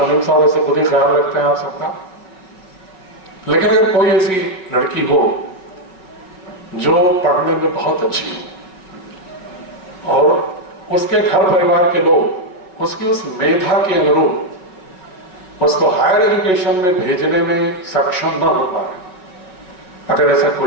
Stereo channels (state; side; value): late; right; 5.4 ms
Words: साहब ऐसे खुद ही ख्याल रखते हैं आप सबका, लेकिन अगर कोई ऐसी लड़की हो जो पढ़ने में बहुत अच्छी हो और उसके घर परिवार के लोग उसकी उस मेधा के अनुरूप उसको हायर एजुकेशन में भेजने में सक्षम न हो पाए, अगर ऐसा